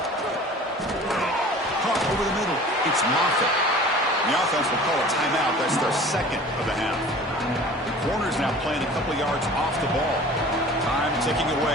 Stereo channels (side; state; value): both; normal; correlation 0.44